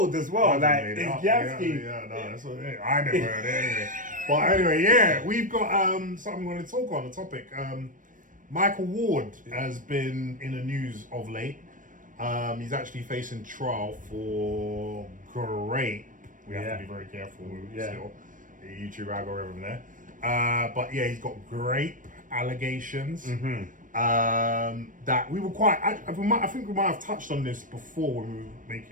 as well. Like, it's galski. Yeah, no, that's what it is. I never heard it anyway. But anyway, yeah, we've got something we want to talk on, the topic. Micheal Ward has been in the news of late. He's actually facing trial for rape. We have to be very careful still. The YouTube algorithm there. But yeah, he's got rape allegations. Mm-hmm. That we were quite... I think we might have touched on this before when we were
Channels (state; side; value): late; left; 0.38 ms